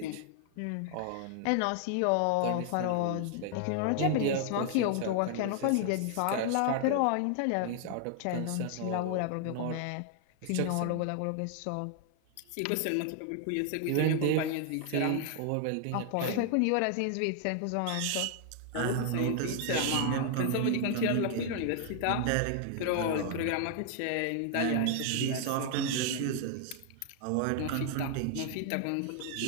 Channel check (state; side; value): different; both; correlation 0.00